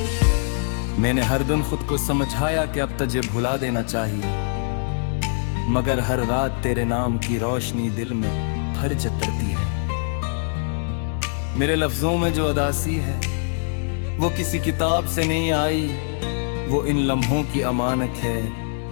मैंने हर दिन खुद को समझाया कि अब तुझे भुला देना चाहिए, मगर हर रात तेरे नाम की रोशनी दिल में भर जतरती है। मेरे लफ्जों में जो अदासी है वो किसी किताब से नहीं आई, वो इन लम्हों की अमानत है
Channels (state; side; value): silent; right; digital silence